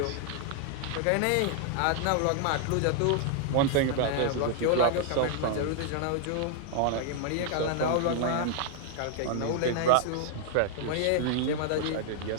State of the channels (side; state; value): both; different; correlation 0.00